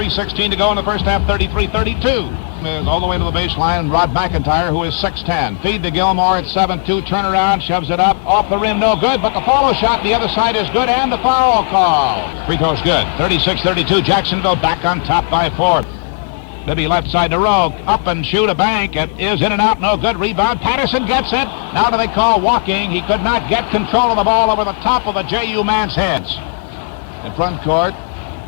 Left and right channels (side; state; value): right; silent; digital silence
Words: to go in the first half, 33-32. All the way to the baseline, Rod McIntyre, who is 6'10". Feed to Gilmore at 7-2. Turnaround, shoves it up. Off the rim, no good, but the follow shot the other side is good, and the foul call. Free throw's good. 36-32. Jacksonville back on top by 4. Bibby left side to Rowe. Up and shoot a bank. It is in and out. No good. Rebound. Patterson gets it. Now do they call walking? He could not get control of the ball over the top of the JU man's heads. In front court,